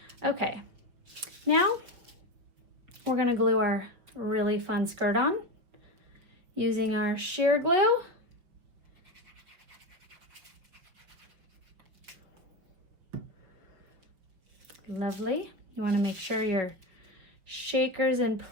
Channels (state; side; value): late; left; 5.9 ms